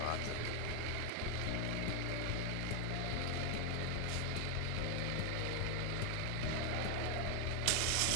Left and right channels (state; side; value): different; both; correlation 0.01